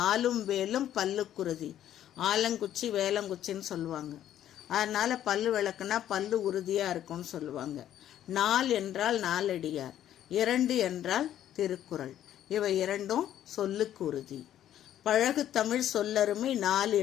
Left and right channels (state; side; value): quieter; right; 11.4 dB